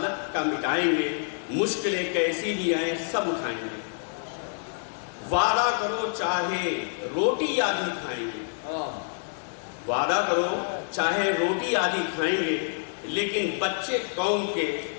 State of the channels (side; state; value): right; silent; digital silence